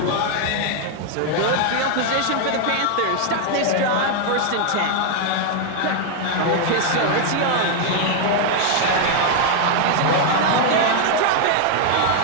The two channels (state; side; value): different; both; correlation 0.00